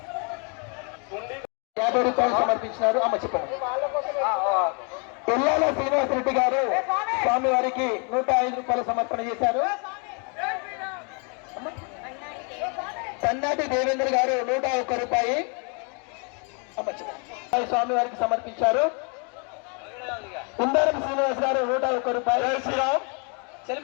50 రూపాయలు సమర్పించినారు. అమ్మ చెప్పండి. పిల్లాల శ్రీనివాసరెడ్డి గారు స్వామి వారికి 105 రూపాయలు సమర్పణ చేశారు. సన్నాటి దేవేంద్ర గారు 101 రూపాయి స్వామి వారికి సమర్పించారు. కుందారం శ్రీనివాస్ గారు 101 రూపాయలు. శ్రీరామ్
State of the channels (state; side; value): quieter; right; 36.6 dB